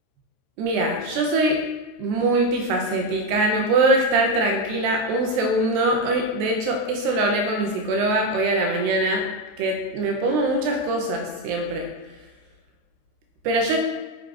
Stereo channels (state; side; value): late; left; 13 ms